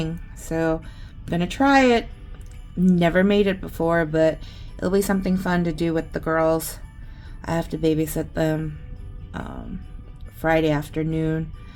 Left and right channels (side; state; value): both; identical; correlation 1.00